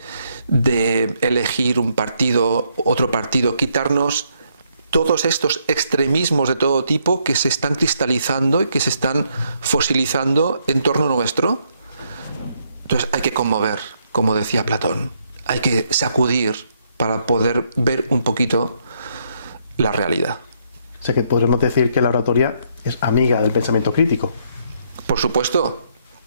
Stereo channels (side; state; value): both; inverted; correlation -0.73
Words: elegir un partido, otro partido, quitarnos todos estos extremismos de todo tipo que se están cristalizando y que se están fosilizando en torno nuestro. Entonces hay que conmover, como decía Platón, hay que sacudir para poder ver un poquito la realidad. O sea que podríamos decir que la oratoria es amiga del pensamiento crítico. Por supuesto,